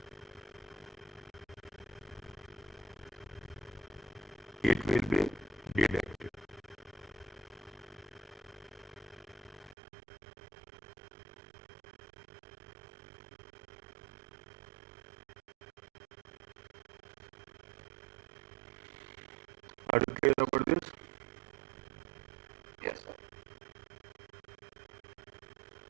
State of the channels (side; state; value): left; drops out; at 9.8 s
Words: It will be deducted. Are you clear about this? Yes, sir.